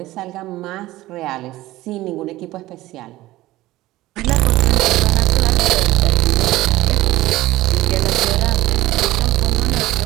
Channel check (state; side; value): quieter; left; 17.1 dB